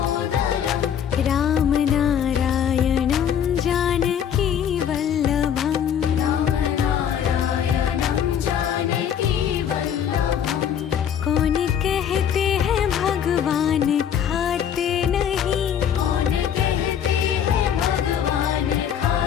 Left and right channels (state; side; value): quieter; right; 8.8 dB